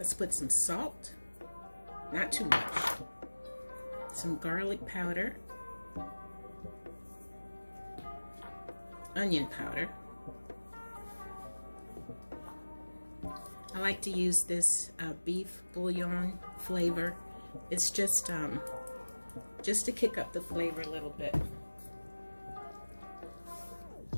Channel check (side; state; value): both; inverted; correlation -1.00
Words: put some salt, not too much. Some garlic powder, onion powder. I like to use this beef bouillon flavor. It's just to kick up the flavor a little bit.